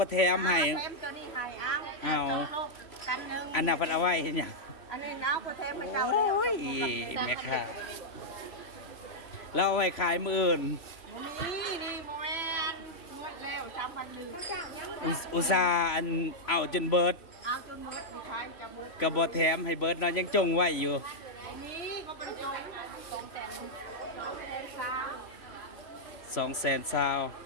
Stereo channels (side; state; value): right; late; 3.0 ms